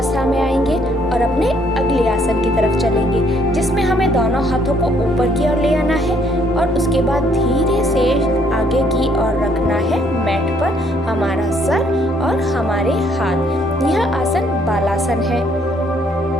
में आएंगे और अपने अगले आसन की तरफ चलेंगे, जिसमें हमें दोनों हाथों को ऊपर की ओर ले आना है और उसके बाद धीरे से आगे की ओर रखना है मैट पर हमारा सर और हमारे हाथ। यह आसन बालासन है।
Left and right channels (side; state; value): both; normal; correlation 0.66